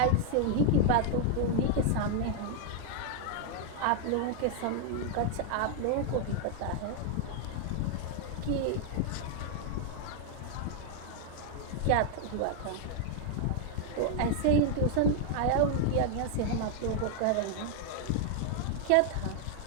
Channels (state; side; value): different; both; correlation 0.00